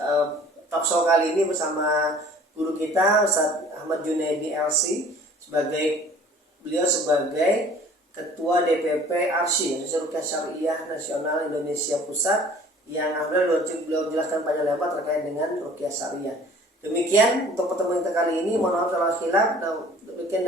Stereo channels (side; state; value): both; normal; correlation 0.50